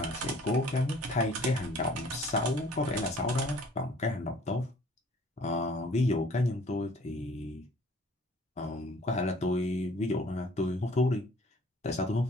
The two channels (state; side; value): normal; both; correlation 0.54